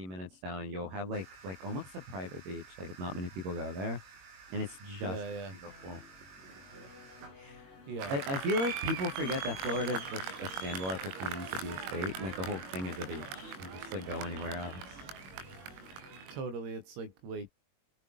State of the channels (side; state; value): left; late; 22 ms